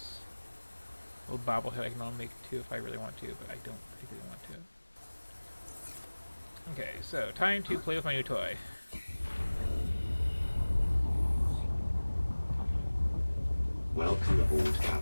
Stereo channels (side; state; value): both; inverted; correlation -1.00